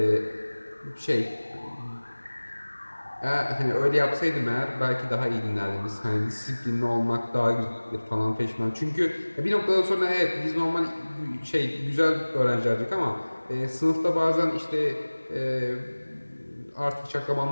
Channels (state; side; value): inverted; both; correlation -1.00